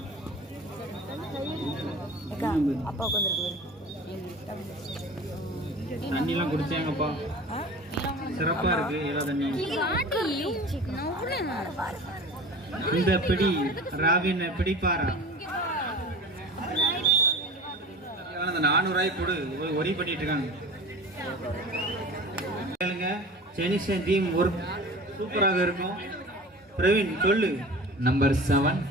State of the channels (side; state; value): both; normal; correlation 0.37